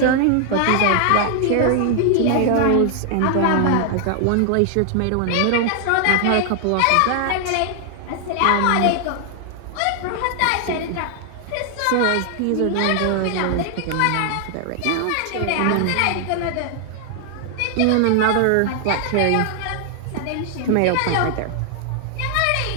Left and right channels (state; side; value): different; both; correlation 0.00